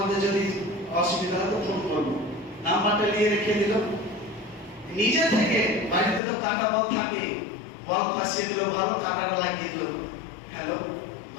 যদি অসুবিধা হয় তো ফোন করবো। নাম্বারটা নিয়ে রেখে দিল। নিজে থেকে বাড়িতে তো কাটা বল থাকে, বল ফাঁসিয়ে দিল, ভালো কাটাটা লাগিয়ে দিল। হ্যালো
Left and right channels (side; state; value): right; drops out; at 6.2 s